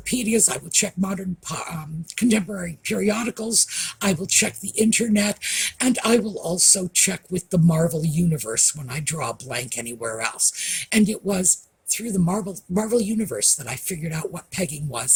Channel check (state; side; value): identical; both; correlation 1.00